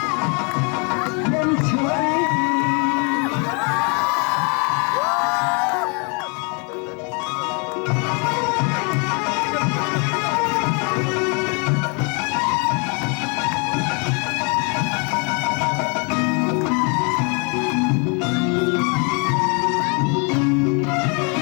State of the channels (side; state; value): right; quieter; 34.8 dB